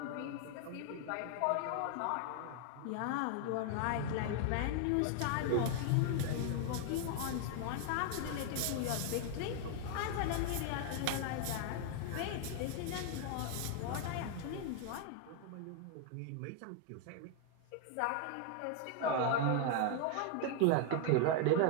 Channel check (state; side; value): different; both; correlation 0.00